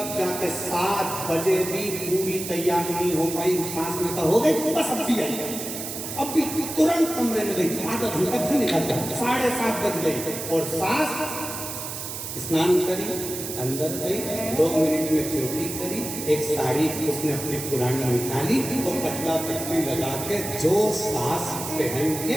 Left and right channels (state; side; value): noise; right; hiss, 7 dB below the sound